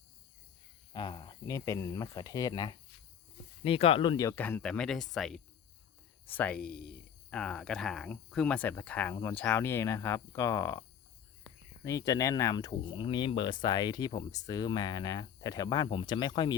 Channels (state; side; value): quieter; right; 8.3 dB